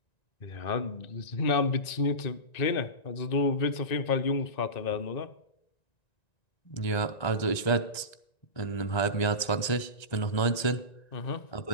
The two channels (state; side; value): late; right; 1.9 ms